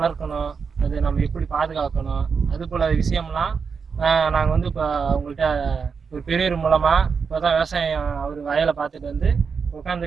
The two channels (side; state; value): left; quieter; 5.7 dB